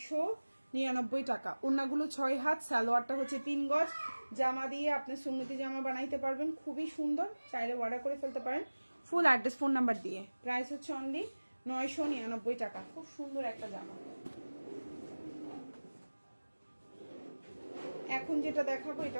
টাকা। ওড়নাগুলো 6 হাত, সালোয়ারটা হচ্ছে 3 গজ। জামা দিয়ে আপনি সুন্নতি জামা বানাইতে পারবেন, খুবই সুন্দর। চাইলে অর্ডার করে ফেলতে পারেন ফুল অ্যাড্রেস ফোন নাম্বার দিয়ে। প্রাইস হচ্ছে অনলি 999 টাকা। খুব সুন্দর একটা জামা। এখন যেটা দেখাবো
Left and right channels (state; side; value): inverted; both; correlation -1.00